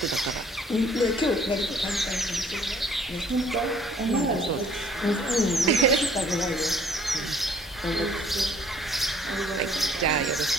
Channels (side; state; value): both; normal; correlation 0.58